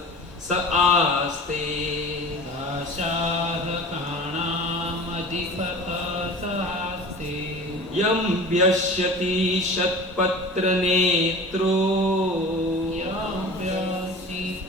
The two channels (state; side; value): normal; both; correlation 0.38